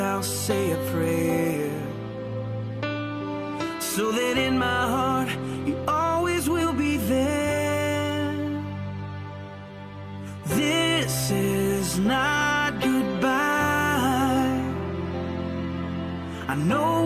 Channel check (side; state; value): both; identical; correlation 1.00